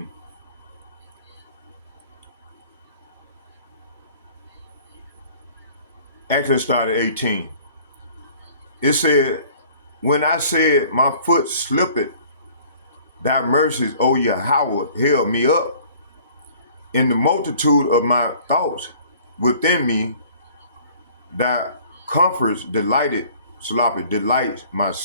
Actually, start at 18. It said, when I said my foot slipped, thy mercies, O Yahweh, held me up. In the multitude of my thoughts within me, thy comforts delights my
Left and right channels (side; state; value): both; inverted; correlation -0.52